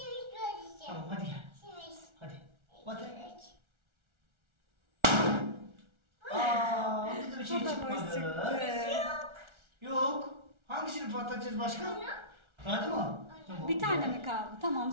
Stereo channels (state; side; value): late; left; 1.4 ms